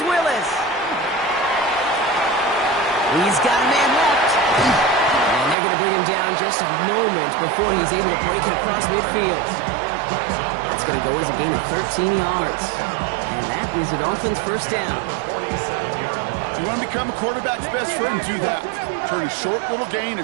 Willis. He's got a man left. And they're going to bring him down just a moment before he's able to break it across midfield. That's going to go as a gain of 13 yards. And that is the Dolphins' 1st down. You want to become a quarterback's best friend, do that. Turn a short little gain,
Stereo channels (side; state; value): left; drops out; at 5.6 s